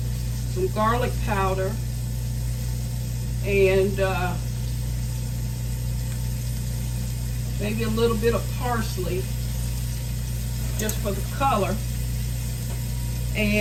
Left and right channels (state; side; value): identical; both; correlation 1.00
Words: some garlic powder, and maybe a little bit of parsley just for the color.